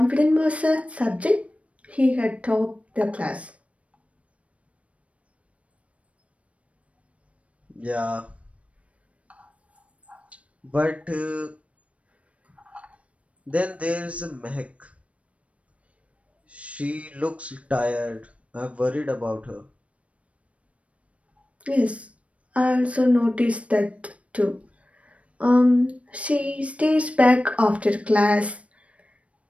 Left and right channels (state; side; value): late; left; 0.064 ms